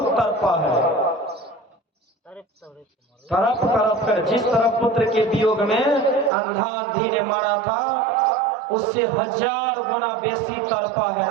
तड़पा है। तरफ तरफ कर, जिस तरफ पुत्र के वियोग में अंधा अंधी ने मारा था उससे 1000 गुना बेसी तड़पा है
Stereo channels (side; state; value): left; drops out; at 6.3 s